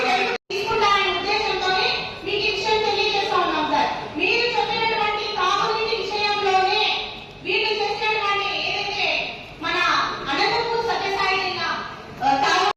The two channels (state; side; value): identical; both; correlation 1.00